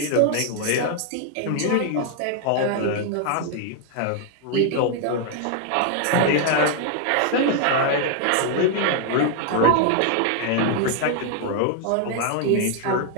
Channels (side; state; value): both; different; correlation 0.00